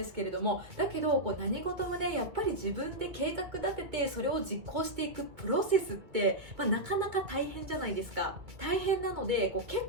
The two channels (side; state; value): left; late; 2.3 ms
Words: すけれども、だけど何事もねやっぱり自分で計画立ててそれを実行していくプロセスって、なかなか大変じゃないですか。大変なので結